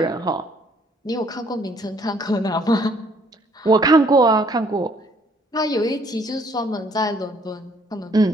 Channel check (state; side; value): normal; both; correlation 0.63